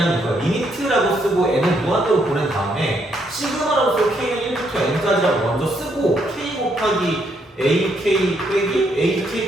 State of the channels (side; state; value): both; normal; correlation 0.74